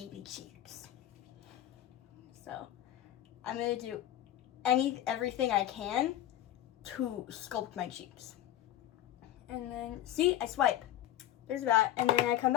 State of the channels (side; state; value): right; quieter; 12.8 dB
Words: cheeks. So I'm gonna do everything I can to sculpt my cheeks. And then, see, I swipe. There's that. And then I come